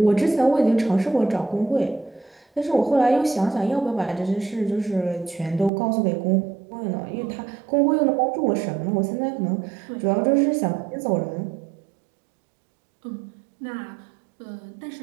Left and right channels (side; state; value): left; drops out; at 5.7 s